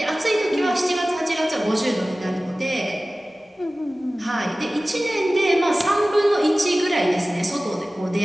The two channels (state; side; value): normal; both; correlation 0.97